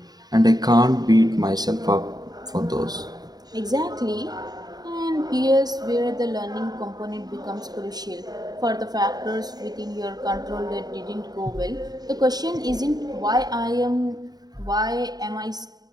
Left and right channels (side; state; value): left; late; 0.19 ms